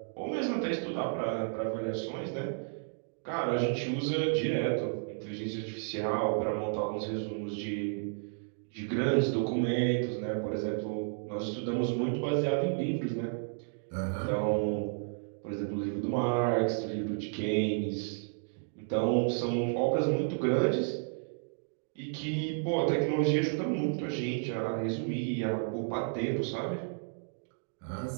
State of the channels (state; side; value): silent; left; digital silence